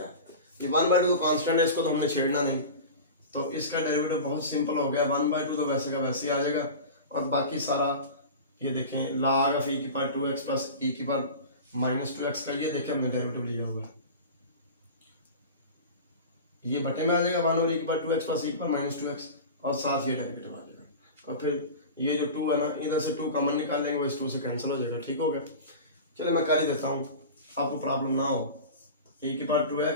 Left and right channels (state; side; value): inverted; both; correlation -0.32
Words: ये 1/2 कांस्टेंट है, इसको तो हमने छेड़ना नहीं, तो इसका डेरिवेटिव बहुत सिंपल हो गया, 1/2 तो वैसे का वैसे ही आ जाएगा, और बाकी सारा ये देखें log ऑफ e की पावर 2x प्लस e की पावर माइनस 2x का ये देखें हमने डेरिवेटिव लिया हुआ, ये बटे में आ जाएगा 1/e की पावर 2x प्लस e की पावर माइनस 2x, और साथ ये डेरिवेटिव आ जाएगा, और फिर ये जो 2 है ना इधर से 2 कॉमन निकाल लेंगे, वो इस 2 से कैंसिल हो जाएगा। ठीक हो गया, चलिए मैं कर ही देता हूँ आपको प्रॉब्लम ना हो। e की पावर